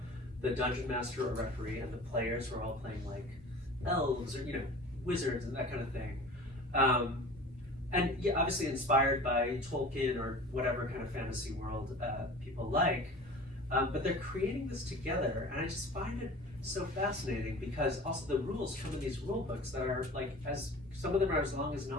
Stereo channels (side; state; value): both; normal; correlation 0.39